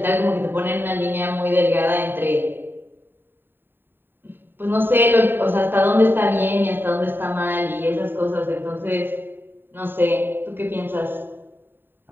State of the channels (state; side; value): late; left; 0.097 ms